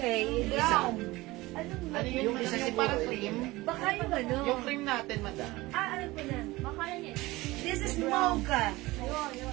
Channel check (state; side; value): quieter; left; 20.1 dB